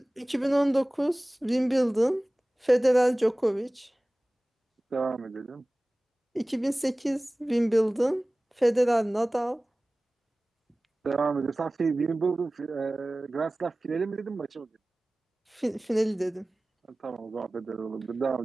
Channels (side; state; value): both; normal; correlation 0.98